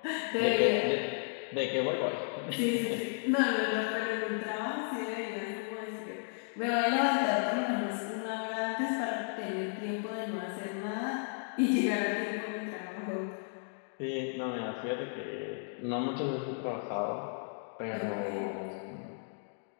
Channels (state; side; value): silent; right; digital silence